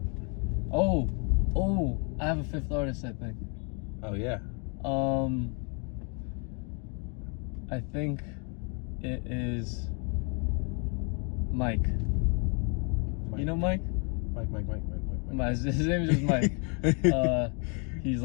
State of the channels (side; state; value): right; quieter; 36.2 dB